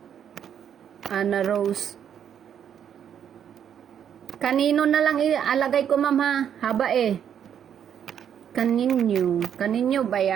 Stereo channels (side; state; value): left; quieter; 8.9 dB